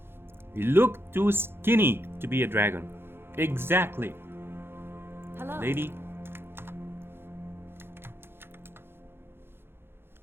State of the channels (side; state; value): left; late; 0.11 ms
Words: You look too skinny to be a dragon. Exactly. Hello. Lady.